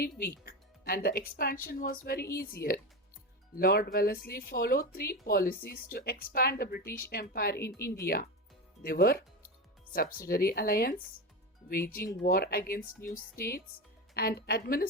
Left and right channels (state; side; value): normal; both; correlation 0.20